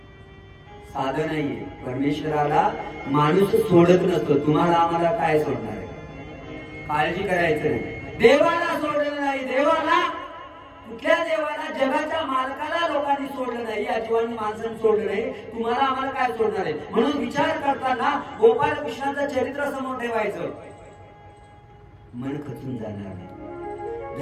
साधं नाहीये. परमेश्वराला माणूस सोडत नसतो. तुम्हाला आम्हाला काय सोडणार आहे? काळजी करायचं नाही. देवाला सोडलं नाही. देवाला, कुठल्या देवाला? जगाच्या मालकाला लोकांनी सोडलं नाही, या जीवांनी माणसांनी सोडलं नाही. तुम्हाला आम्हाला काय सोडणार आहे? म्हणून विचार करताना गोपाल कृष्णाचं चरित्र समोर ठेवायचं. मन खचून जाणार नाही.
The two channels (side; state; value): both; identical; correlation 1.00